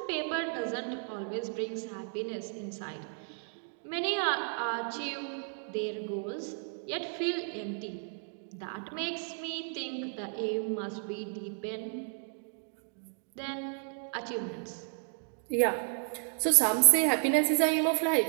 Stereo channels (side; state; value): left; silent; 56 dB below the other